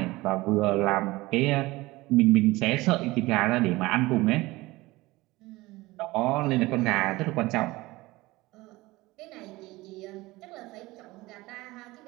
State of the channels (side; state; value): left; quieter; 20.2 dB